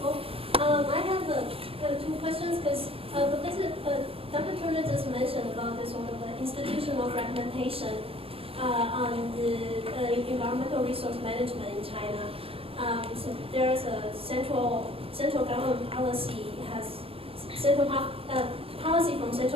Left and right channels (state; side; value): late; left; 0.28 ms